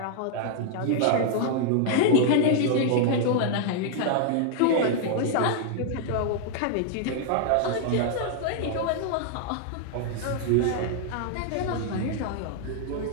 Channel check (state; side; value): different; both; correlation -0.01